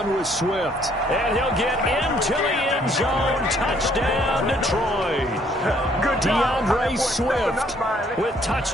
with Swift, and he'll get into the end zone. Touchdown, Detroit. DeAndre Swift with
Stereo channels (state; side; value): normal; both; correlation 0.64